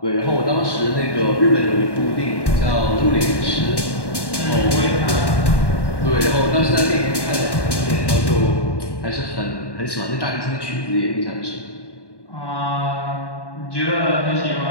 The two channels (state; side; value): late; right; 1.1 ms